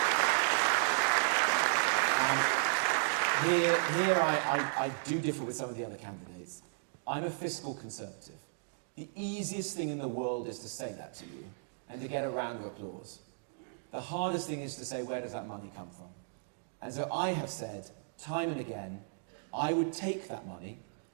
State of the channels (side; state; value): left; silent; digital silence